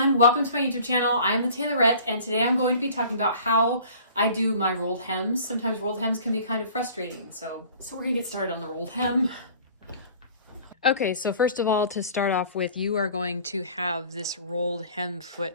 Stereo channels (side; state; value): both; inverted; correlation -0.48